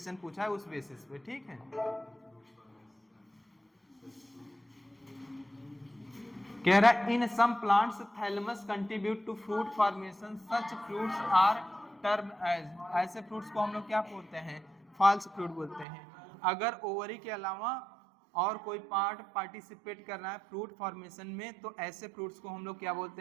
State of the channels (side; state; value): left; drops out; at 15.9 s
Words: पूछा है उस बेसिस पे। ठीक है, कह रहा है in some plants thalamus contribute to fruit formation, such fruits are term as, ऐसे फ्रूट्स को हम लोग क्या बोलते हैं, फॉल्स फ्रूट बोलते हैं। अगर ओवरी के अलावा और कोई पार्ट पार्टिसिपेट कर रहा है फ्रूट फॉर्मेशन में तो ऐसे फ्रूट्स को हम लोग क्या